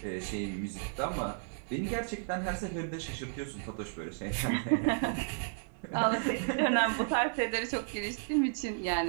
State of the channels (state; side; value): silent; left; digital silence